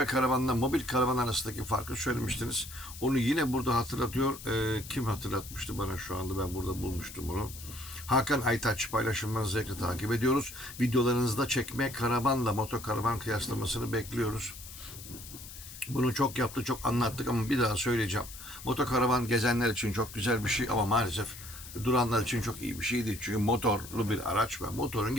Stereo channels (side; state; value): left; noise; hiss, 14 dB below the sound